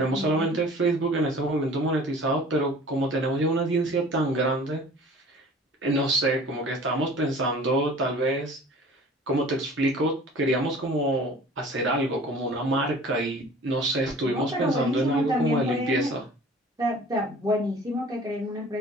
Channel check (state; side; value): normal; both; correlation 0.46